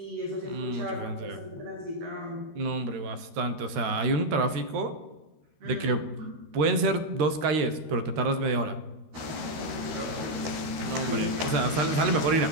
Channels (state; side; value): late; left; 13 ms